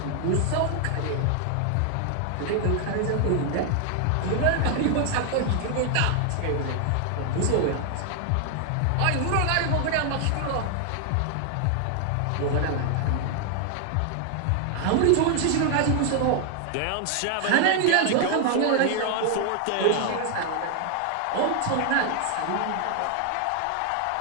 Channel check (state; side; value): different; both; correlation 0.00